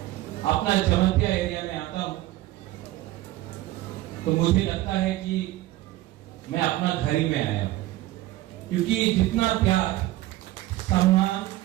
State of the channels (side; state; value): left; quieter; 16.2 dB